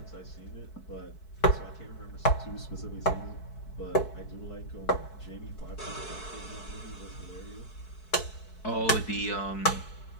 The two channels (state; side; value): late; right; 4.6 ms